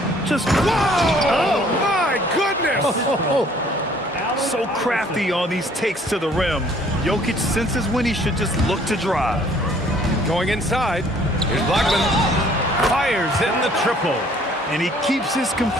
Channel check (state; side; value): normal; both; correlation 0.58